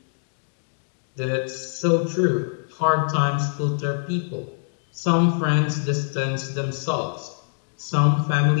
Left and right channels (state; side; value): silent; right; digital silence